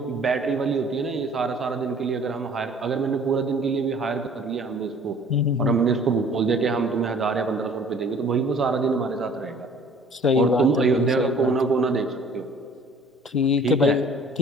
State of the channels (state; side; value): normal; both; correlation 0.52